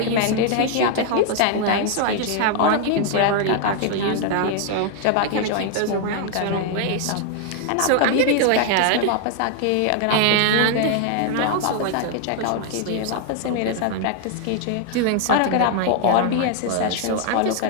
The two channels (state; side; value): different; both; correlation 0.00